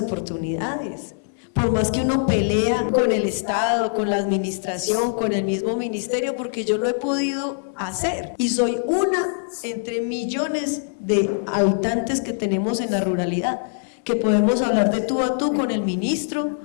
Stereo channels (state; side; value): silent; right; digital silence